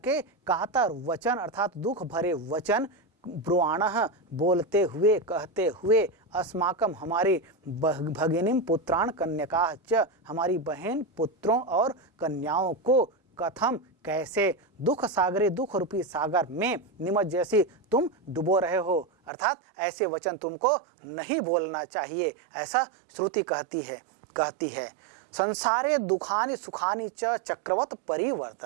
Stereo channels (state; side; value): drops out; left; at 19.3 s